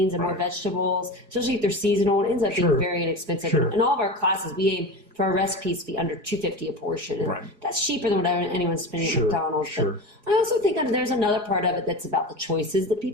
and more vegetables, especially if they're seasonal, it ends up being very inexpensive. In all of our classes, we aim for our recipes to be under $2.50 a portion. And that's cheaper than what anyone's spending at McDonald's. But I also think there's another part of it that's about the choices that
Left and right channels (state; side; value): late; left; 4.8 ms